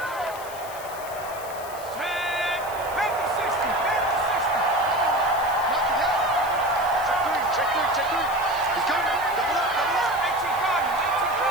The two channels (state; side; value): noise; left; hiss, 16 dB below the sound